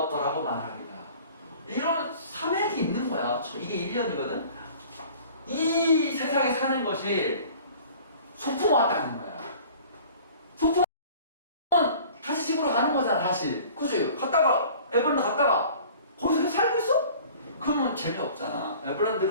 말하리라. 이런 사맥이 있는 거야. 이게 1년이거든. 이 세상에 사는 것이 소풍 왔다는 거야. 소풍은 다시 집으로 가는 거잖아. 다시 그치? 에버랜드 갔다가 거기서 계속 살고 있어? 그러면 재미없잖아.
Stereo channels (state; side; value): inverted; both; correlation -0.47